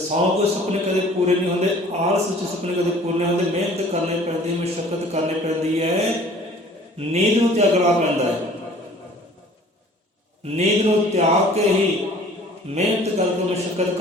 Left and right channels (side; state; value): both; normal; correlation 0.50